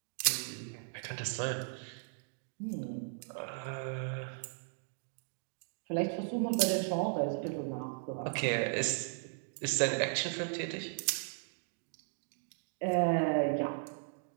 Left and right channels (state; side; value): silent; left; digital silence